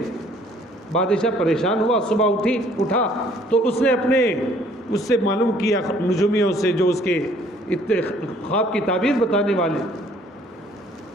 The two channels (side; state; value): both; normal; correlation 0.59